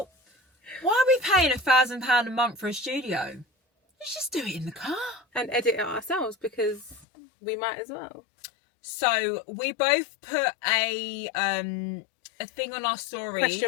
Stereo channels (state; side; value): drops out; right; at 7.1 s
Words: why are we paying £1,000 a month for a studio? Let's just do it in the car. And edit it ourselves because we might as well. So we both put a thing on our stories.